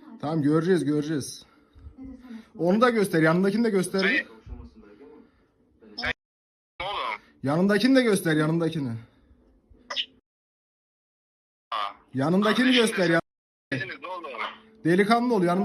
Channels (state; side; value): identical; both; correlation 1.00